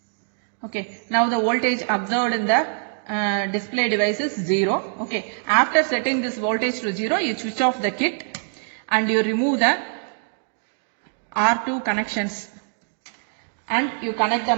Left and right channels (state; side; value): silent; left; 63 dB below the other